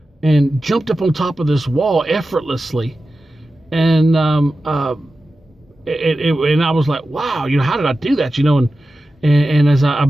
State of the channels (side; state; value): both; normal; correlation 0.93